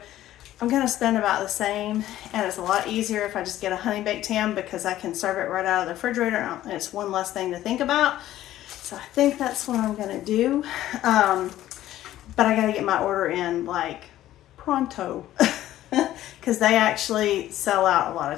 I'm going to spend about the same, and it's a lot easier if I just get a Honey Baked Ham, because I can serve it right out of the refrigerator, and it's one less thing to think about. So I think that's what I'm going to do. But I got to get my order in like pronto, because they actually sell out a lot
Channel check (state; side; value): quieter; right; 13.7 dB